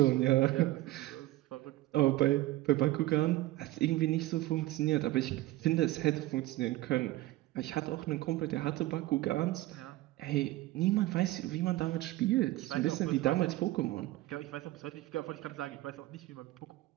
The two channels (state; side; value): quieter; left; 17.5 dB